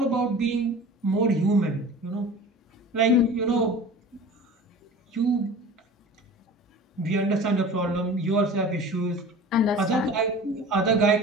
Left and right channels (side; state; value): both; normal; correlation 0.39